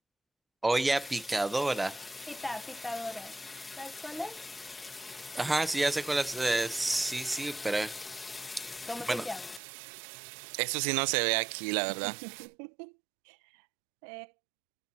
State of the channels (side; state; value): left; drops out; at 9.6 s